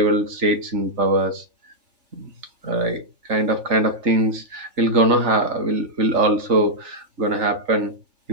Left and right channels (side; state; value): left; late; 3.4 ms